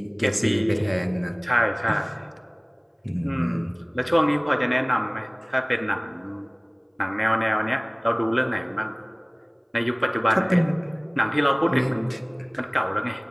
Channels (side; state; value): both; identical; correlation 1.00